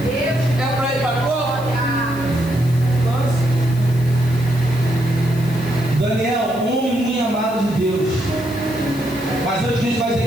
para ir para cova? Daniel, homem muito amado de Deus. Mas antes disso vai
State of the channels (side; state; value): left; noise; hiss, 19 dB below the sound